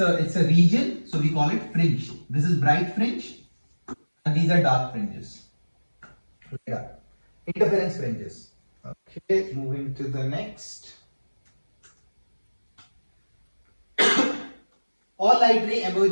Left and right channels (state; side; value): inverted; both; correlation -1.00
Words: a region, so we call it fringe. This is bright fringe and these are dark fringes. Yeah. Interference fringes. Okay, moving to the next. All light ray